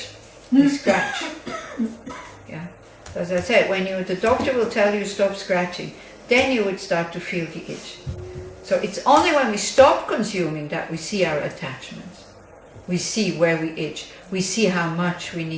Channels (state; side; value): identical; both; correlation 1.00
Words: we scratch. Yeah. As I said, when the doctor will tell you stop scratching, then you would start to feel the itch. So it's only when we stop consuming that we see our attachments. We see where we itch. We see how much we